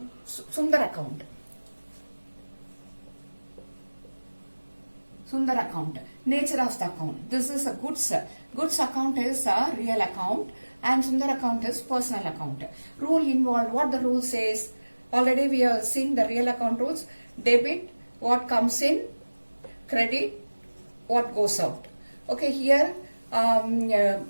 Sundar account. Sundar account. Nature of the account. This is a goods. Goods account is a real account and Sundar account is personal account. Rule involved. What the rule says? Already we have seen the real account rules. Debit, what comes in. Credit, what goes out. Okay, here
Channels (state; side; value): inverted; both; correlation -1.00